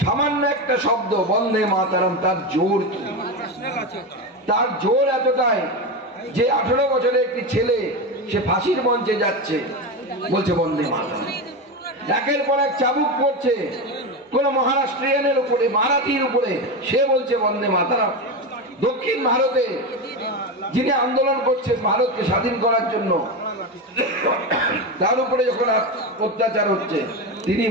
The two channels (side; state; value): both; normal; correlation 0.17